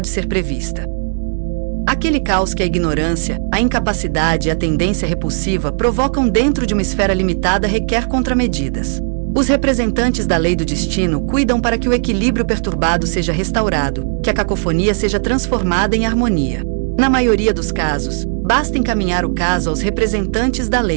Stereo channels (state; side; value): silent; left; digital silence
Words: ser prevista. Aquele caos que a ignorância, a incapacidade e a tendência repulsiva provocam dentro de uma esfera limitada requer contramedidas. Os representantes da lei do destino cuidam para que o equilíbrio perturbado seja restaurado, que a cacofonia seja transformada em harmonia. Na maioria dos casos, basta encaminhar o caso aos representantes da